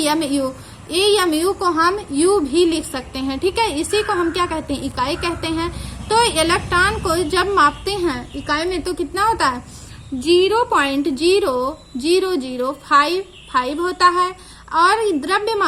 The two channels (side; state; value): both; identical; correlation 1.00